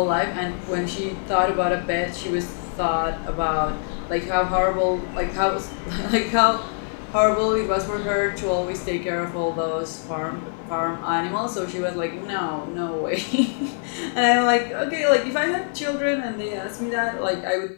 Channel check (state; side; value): silent; right; 62 dB below the other